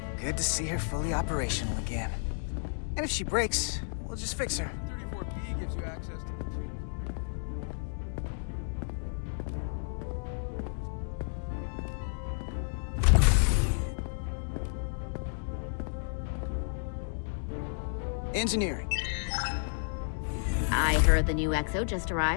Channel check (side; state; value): right; silent; digital silence